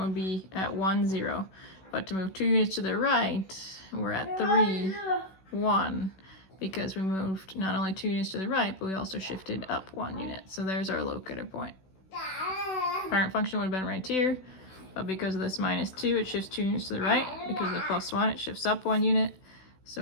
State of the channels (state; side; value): late; right; 16 ms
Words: would be at 1, 0, but to move 2 units to the right, we're at 3, 1, because we moved not only 2 units to the right, but we also shifted up 1 unit. So there's our locator point. Parent function would have been right here, but because of this -2, it shifts 2 units to the right. Because of the +1, it shifts up 1 unit. So